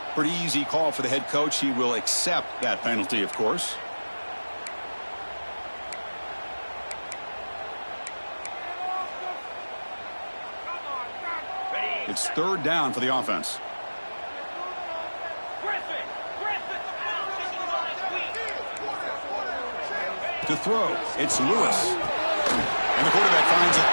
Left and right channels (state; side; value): inverted; both; correlation -1.00